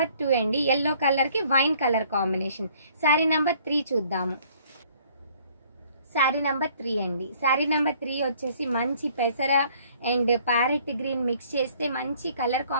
2 అండి. ఎల్లో కలర్ కి wine colour combination. Sari number 3 చూద్దాము. శారీ నంబర్ 3 అండి. శారీ నంబర్ 3 వచ్చేసి మంచి పెసర అండ్ ప్యారెట్ గ్రీన్ మిక్స్ చేస్తే మంచి కలర్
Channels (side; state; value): both; inverted; correlation -0.59